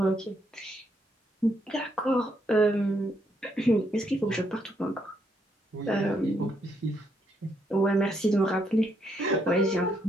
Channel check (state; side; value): normal; both; correlation 0.75